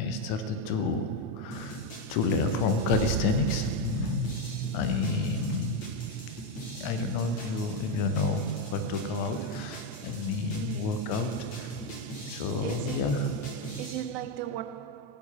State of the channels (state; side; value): late; right; 9.1 ms